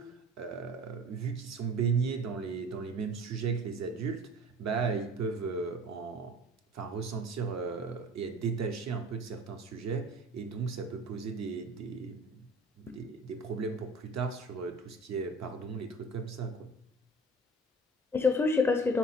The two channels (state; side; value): normal; both; correlation 0.44